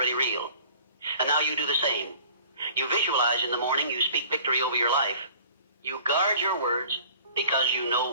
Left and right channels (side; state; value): both; inverted; correlation -0.49